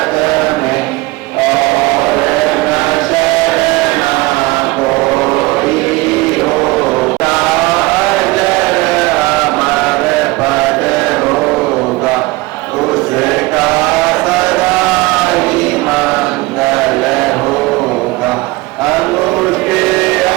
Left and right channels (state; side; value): quieter; left; 21.7 dB